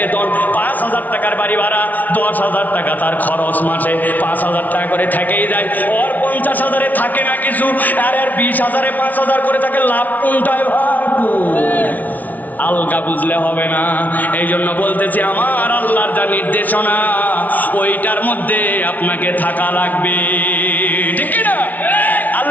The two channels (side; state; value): right; late; 0.077 ms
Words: 5,000 টাকার বাড়ি ভাড়া, 10,000 টাকা তার খরচ, মাসে 5,000 টাকা করে থেকেই যায়। ওর 50,000-এ থাকে না কিছু, আর 20,000-এ 5,000 করে থাকে, লাভ কোনটায় ভাই? আলগা বুঝলে হবে না। এই জন্য বলতেছি আমার আল্লাহর যা নির্দেশনা ওইটার মধ্যে আপনাকে থাকা লাগবে, ঠিক না?